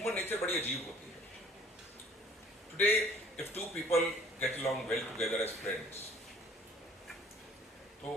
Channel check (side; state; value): both; normal; correlation 0.54